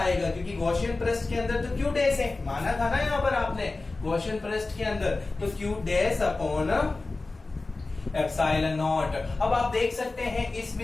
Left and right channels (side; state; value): right; quieter; 3.4 dB